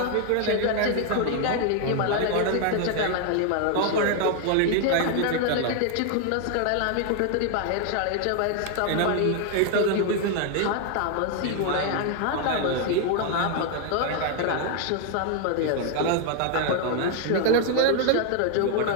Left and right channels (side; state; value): both; different; correlation 0.00